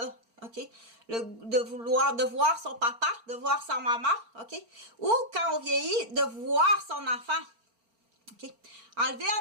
OK? De voir son papa, de voir sa maman, OK? Ou quand on vieillit, de voir son enfant, OK? Enlever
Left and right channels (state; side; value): late; left; 4.4 ms